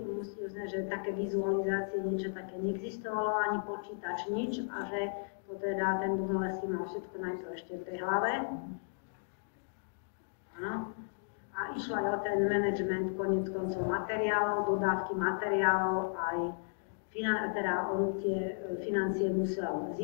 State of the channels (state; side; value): silent; right; digital silence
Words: musí uznať, že také vizualizácie, niečo také neexistovalo, ani počítač, nič, a že to teda ten Brunelleschi mal všetko najprv ešte v tej hlave. No. A išlo aj o ten management koniec koncov materiálov, dodávky materiálov, aj teda on tie financie musel